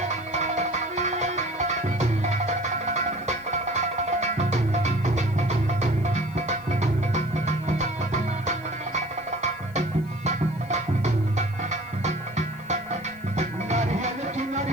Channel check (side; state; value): left; noise; hiss, 27 dB below the sound